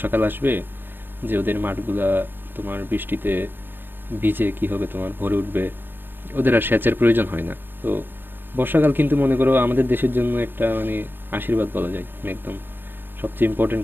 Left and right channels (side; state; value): left; late; 0.095 ms